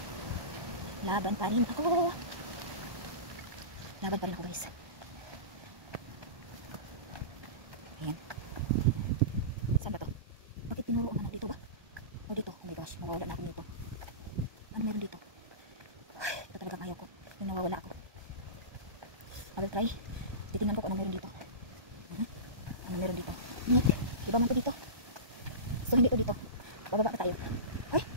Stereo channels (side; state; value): left; late; 1.3 ms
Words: Laban pa rin ako. Laban pa rin ako guys. Ayan. Saan ba to? Bakit tinuro ang ano dito ba? O dito. Oh my gosh. Nawawala na ako dito. Ano meron dito? Ito talagang ayaw ko. Yung nawawala ako. I will try. Titingnan ko kung ano meron dito. Ano meron dito? Nick. Iba man to dito. So hindi to dito. Bababa pa tayo. Ay,